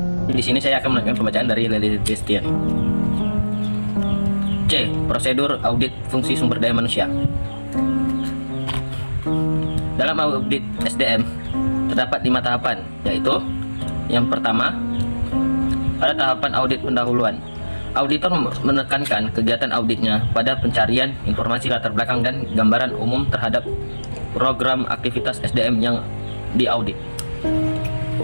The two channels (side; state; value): both; inverted; correlation -1.00